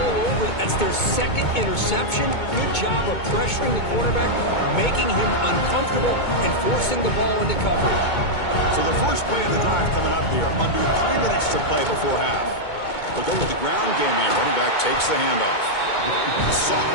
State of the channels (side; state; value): right; late; 2.2 ms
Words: over it. That's their second interception. Good job of pressuring the quarterback, making him uncomfortable, and forcing the ball into coverage. So the first play of the drive coming up here, under 3 minutes to play before half. They'll go with the ground game here. Running back takes the handoff.